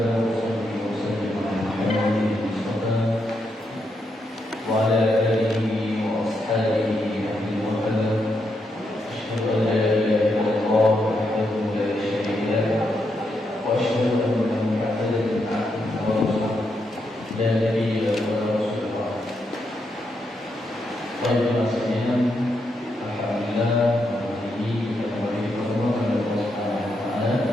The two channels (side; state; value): both; normal; correlation 0.81